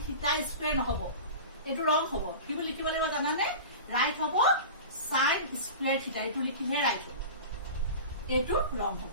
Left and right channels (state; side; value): inverted; both; correlation -0.32